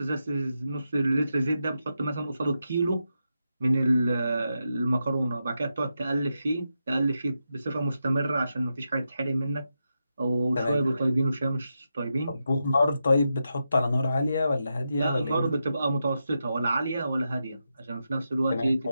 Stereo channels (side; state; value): both; inverted; correlation -0.87